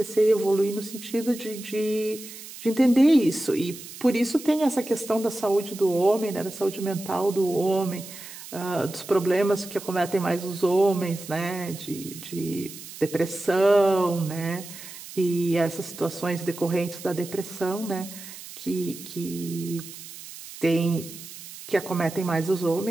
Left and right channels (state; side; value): noise; right; hiss, 14 dB below the sound